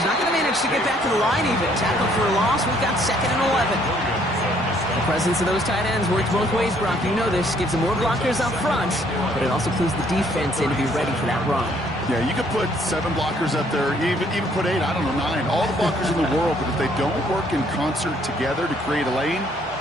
not going to manage to get back to the line even. Tackle for a loss. We've got second and 11. The presence of those tight ends works both ways, Brock. You know this. Gives them more blockers up front, but it also clues the defense in to be ready for that run. Yeah, you could put 7 blockers up there, even put 8, I don't know, 9. All the blockers in the world, but if they don't work in concert together to create a lane,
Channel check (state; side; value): normal; both; correlation 0.65